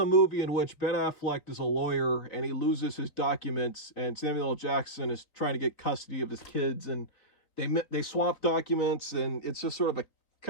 movie in which Ben Affleck is a lawyer and he loses his documents, and Samuel L. Jackson is trying to get custody of his kids, and they swap documents, and it's just sort of a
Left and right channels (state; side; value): late; right; 3.7 ms